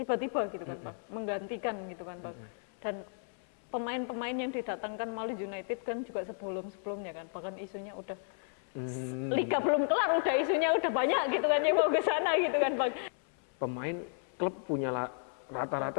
tiba-tiba gitu kan Bang, menggantikan gitu kan Bang. Dan pemain-pemain yang didatangkan Malang United kan juga sebelum-sebelumnya kan, bahkan isunya udah liga belum kelar udah isunya udah banyak gitu kan yang mau ke sana gitu kan Bang. Pemain klub punya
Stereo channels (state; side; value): silent; right; 55 dB below the other